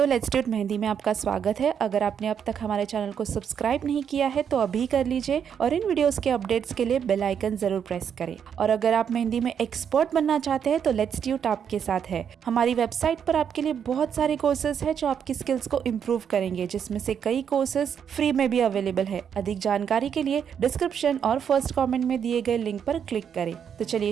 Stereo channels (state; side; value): quieter; left; 7.9 dB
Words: लेट्सट्यूट मेहंदी में आपका स्वागत है। अगर आपने अब तक हमारे चैनल को सब्सक्राइब नहीं किया है तो अभी कर लीजिए और इन वीडियोस के अपडेट्स के लिए बेल आइकन जरूर प्रेस करें। और अगर आप मेहंदी में एक्सपर्ट बनना चाहते हैं तो लेट्सट्यूट आपके साथ है। हमारी वेबसाइट पर आपके लिए बहुत सारे कोर्सेज है जो आपकी स्किल्स को इम्प्रूव करेंगे, जिसमें से कई कोर्सेज फ्री में भी अवेलेबल है। अधिक जानकारी के लिए डिस्क्रिप्शन और फर्स्ट कमेंट में दिए गए लिंक पर क्लिक करें। तो